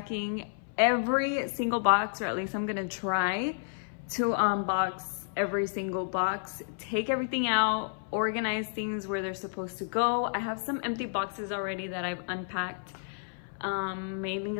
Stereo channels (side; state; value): right; silent; 57 dB below the other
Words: every single box, or at least I'm gonna try to unbox every single box, take everything out, organize things where they're supposed to go. I have some empty boxes already that I've unpacked, mainly